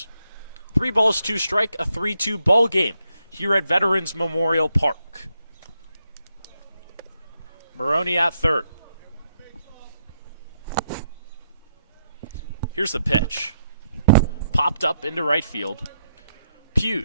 3 balls, 2 strike, a 3-2 ball game here at Veterans Memorial Park. Maroney at third. Here's the pitch. Popped up into right field.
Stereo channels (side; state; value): both; inverted; correlation -0.79